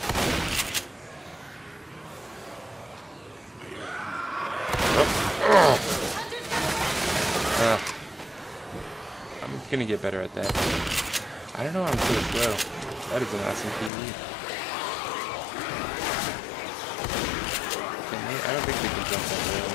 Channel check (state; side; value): drops out; right; at 13.9 s